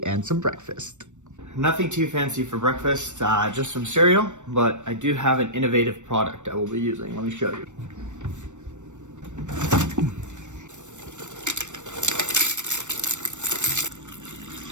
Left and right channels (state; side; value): late; left; 0.84 ms